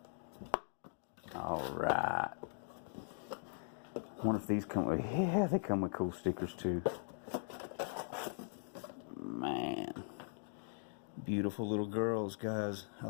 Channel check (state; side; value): silent; right; digital silence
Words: Alright. Wonder if these come with... Yeah, they come with cool stickers too. Man. Beautiful little girls, guys. I